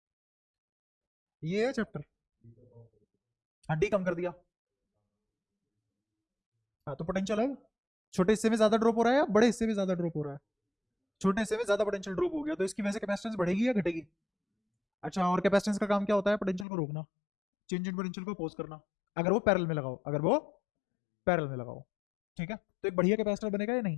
ये है चैप्टर। हाँ, डी कम कर दिया। हाँ, तो पोटेंशियल है, छोटे हिस्से में ज्यादा ड्रॉप हो रहा है या बड़े हिस्से में ज्यादा ड्रॉप हो रहा है? छोटे हिस्से में ज्यादा पोटेंशियल ड्रॉप हो गया, तो इसकी वजह से कैपेसिटेंस बढ़ेगी या घटेगी? अच्छा, और कैपेसिटेंस का काम क्या होता है? पोटेंशियल को रोकना, चेंज इन पोटेंशियल को अपोज करना, अगर वो पैरेलल में लगाओ, अगर वो पैरेलल में लगाओ। ठीक है, तो एक बढ़िया कैपेसिटर बनेगा या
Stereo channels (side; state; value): right; drops out; at 16.7 s